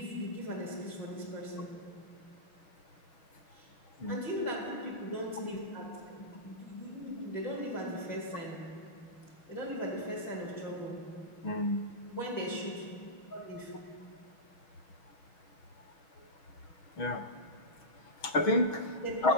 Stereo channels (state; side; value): late; right; 6.3 ms